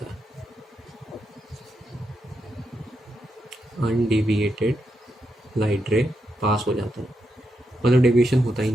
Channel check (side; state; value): both; normal; correlation 0.84